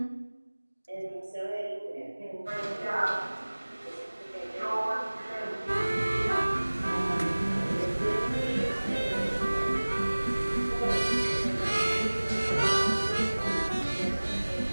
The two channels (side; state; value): both; inverted; correlation -1.00